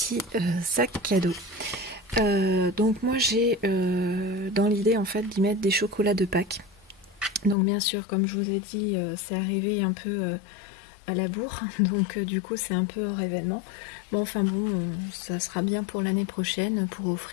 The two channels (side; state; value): right; drops out; at 7.6 s